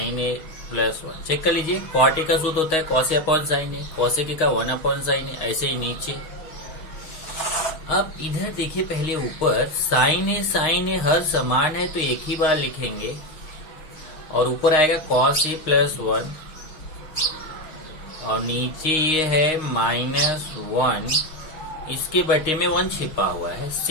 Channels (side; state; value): right; late; 6.0 ms